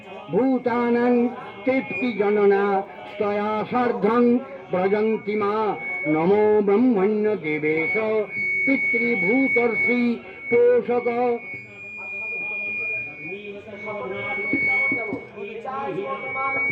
ভূতানাং তৃপ্তিজননা স্তয়া সার্ধং ব্রজন্তি মা। নমো ব্রহ্মণ্য দেবেশ পিতৃভূতর্ষি পোষক।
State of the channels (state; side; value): identical; both; correlation 1.00